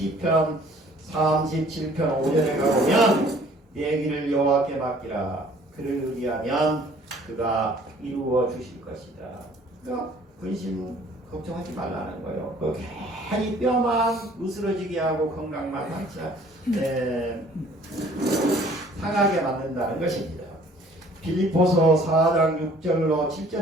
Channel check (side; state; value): both; normal; correlation 0.55